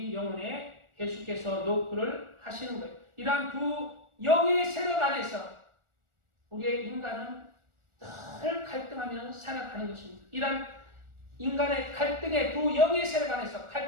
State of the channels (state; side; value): late; left; 1.4 ms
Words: 영혼에 계속해서 노크를 하시는 거예요. 이러한 두 영의 세력 안에서 우리의 인간은 늘 갈등하며 살아가는 것입니다. 이러한 인간의 갈등의 두 영의 세력 안에서